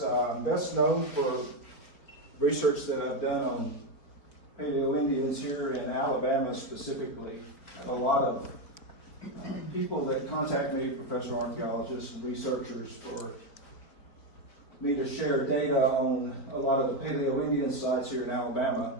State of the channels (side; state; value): right; late; 4.2 ms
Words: I'm best known for research that I've done on Paleo Indians here in Alabama specifically. I have a lot of people that contact me, professional archaeologists and researchers, for me to share data on a lot of the Paleo Indian sites here in Alabama.